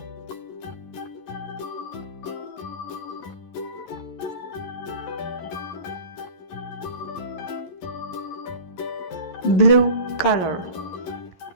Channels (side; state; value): right; late; 11 ms